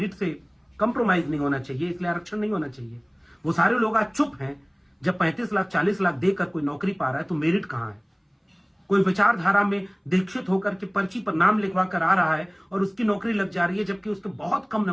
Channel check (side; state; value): both; identical; correlation 1.00